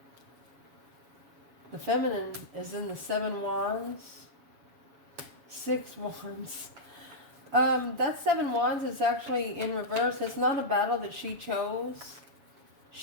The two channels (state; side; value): late; left; 7.2 ms